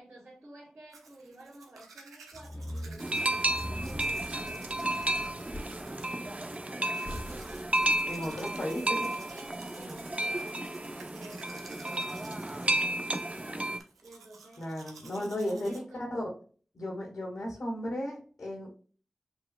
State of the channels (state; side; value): normal; both; correlation 0.70